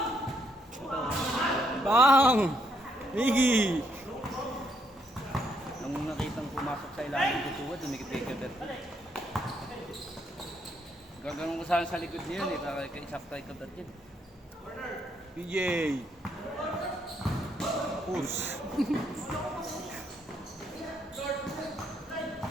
Bang! Miggy! Nung nakitang pumasok sa ilalim ng tuwa, tumingin kay Kaberto. Gagawin ko sana sa likod niya yun eh, para kay Isakta kay Kaberto yun. PJ! Push!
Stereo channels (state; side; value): normal; both; correlation 0.73